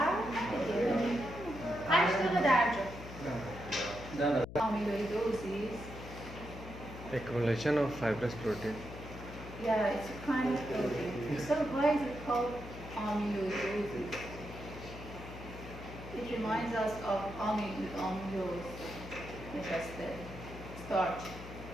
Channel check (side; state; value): left; noise; hum, 12 dB below the sound